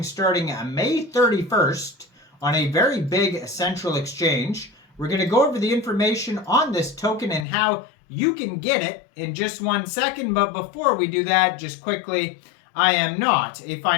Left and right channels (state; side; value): drops out; right; at 7.5 s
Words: starting May 31st on a very big central exchange. We're going to go over the information on this token and how you can get it in just 1 second, but before we do that, just quickly, I am not a